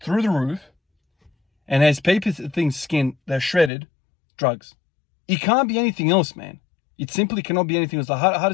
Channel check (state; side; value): drops out; right; at 3.7 s